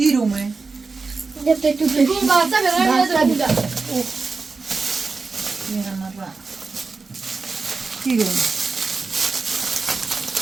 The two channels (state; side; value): quieter; left; 4.3 dB